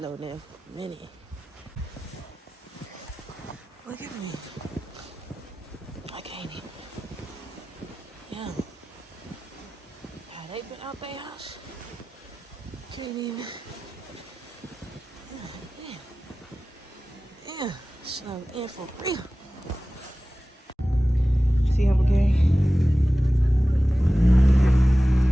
in for a minute. Look at me. I can't even. Yeah. Have they been out their house? Can't even. Yeah. Snowed in for real. See him again?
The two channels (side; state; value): both; normal; correlation 0.96